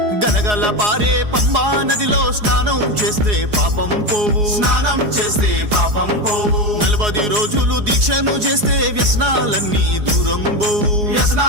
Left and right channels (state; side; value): late; left; 4.8 ms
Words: గలగల పారే పంబా నదిలో స్నానం చేస్తే పాపం పోవు, స్నానం చేస్తే పాపం పోవు. 40 రోజులు దీక్షను చేస్తే వ్యసనాలన్నీ దూరం పోవు,